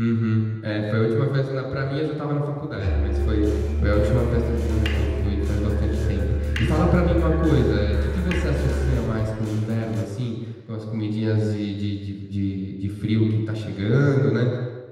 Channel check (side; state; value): both; identical; correlation 1.00